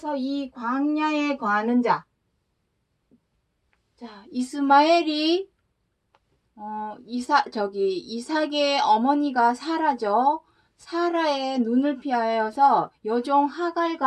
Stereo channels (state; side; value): identical; both; correlation 1.00